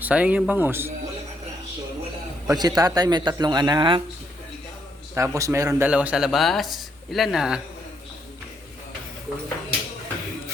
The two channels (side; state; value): both; normal; correlation 0.74